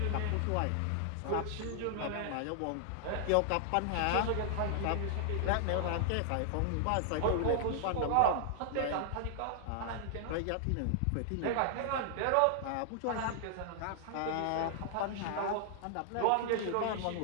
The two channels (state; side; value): different; both; correlation -0.01